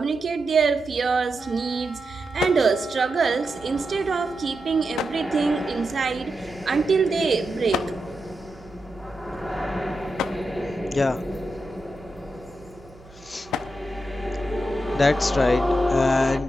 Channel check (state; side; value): noise; right; hum, 24 dB below the sound